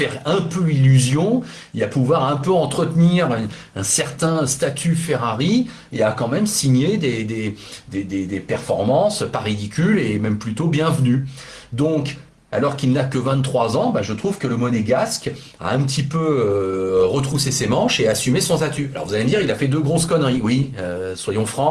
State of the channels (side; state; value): both; identical; correlation 1.00